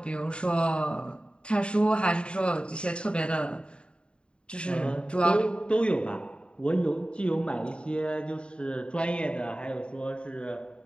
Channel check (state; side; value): late; right; 0.053 ms